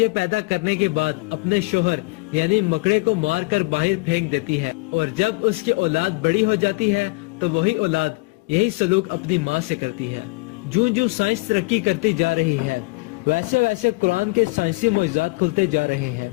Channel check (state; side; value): quieter; right; 25.2 dB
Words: پیدا کرنے کے بعد اپنے شوہر یعنی مکڑے کو مار کر باہر پھینک دیتی ہے، اور جب اس کی اولاد بڑی ہو جاتی ہے تو وہی اولاد یہی سلوک اپنی ماں سے کرتی ہے۔ جوں جوں سائنس ترقی کرتی جا رہی ہے ویسے ویسے قرآن کے سائنسی معجزات کھلتے جا رہے ہیں،